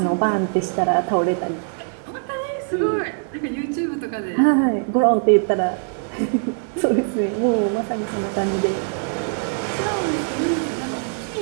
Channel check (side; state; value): left; silent; 61 dB below the other